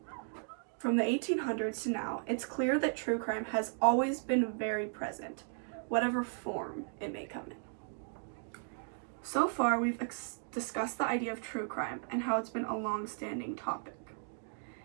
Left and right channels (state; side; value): silent; left; 54 dB below the other